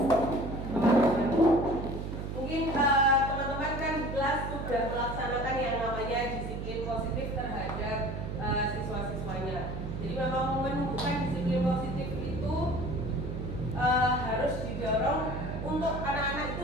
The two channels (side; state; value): right; noise; hum, 5 dB below the sound